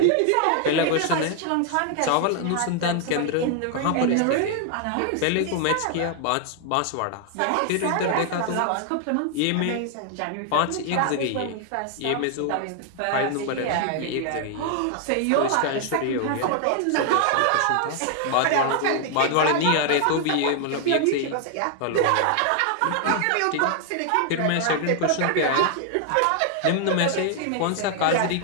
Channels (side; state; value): both; different; correlation 0.00